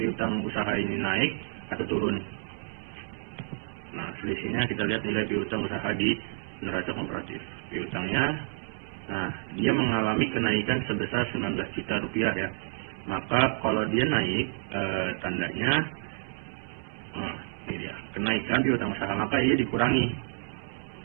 usaha ini naik atau turun. Nah, selisihnya kita lihat nilai piutang usaha di neraca komparatif. Piutangnya, nah, dia mengalami kenaikan sebesar 19 juta rupiah ya. Maka kalau dia naik, tandanya ini dia, kenaikan piutang usaha, maka ini dikurangi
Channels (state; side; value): silent; left; 58 dB below the other